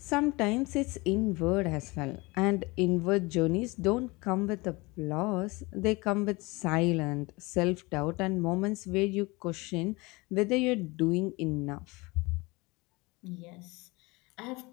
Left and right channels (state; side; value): quieter; right; 24.4 dB